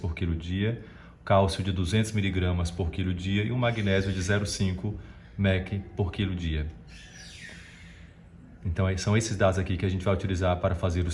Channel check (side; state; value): both; identical; correlation 1.00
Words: quilo dia, cálcio de 200 mg por quilo dia e um magnésio de 0,5 mEq por quilo dia. Então são esses dados aqui que a gente vai utilizar para fazer